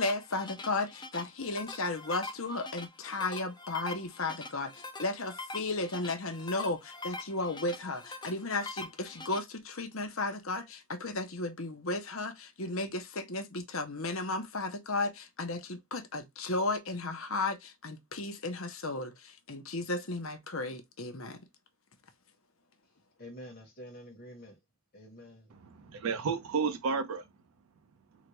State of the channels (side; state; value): both; normal; correlation -0.15